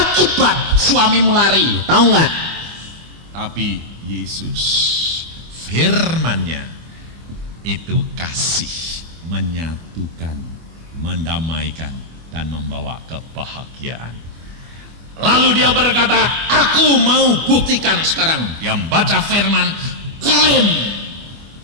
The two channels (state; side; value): late; left; 25 ms